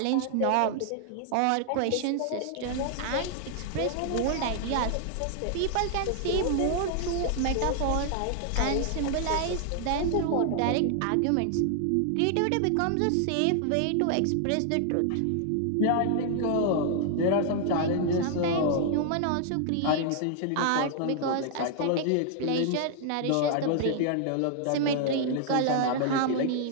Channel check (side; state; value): both; different; correlation 0.00